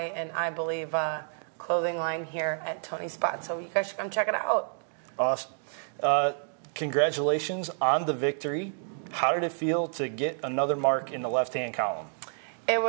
and I believe clothing line here at Tony's Spot. So you guys should come check it out. Awesome. Congratulations on the victory. How did it feel to get another mark in the left-hand column? It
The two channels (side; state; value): left; silent; digital silence